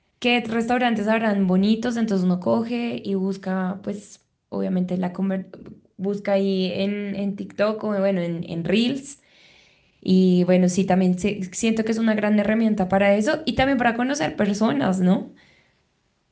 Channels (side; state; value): both; identical; correlation 1.00